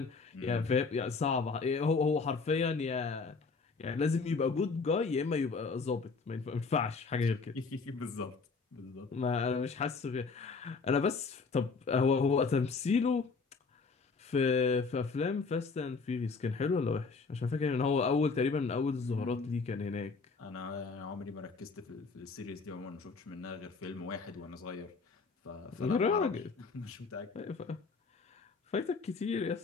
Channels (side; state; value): right; quieter; 4.5 dB